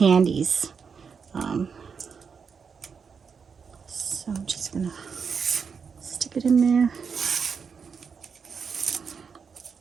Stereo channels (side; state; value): left; quieter; 6.0 dB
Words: So I'm just going to stick it in there.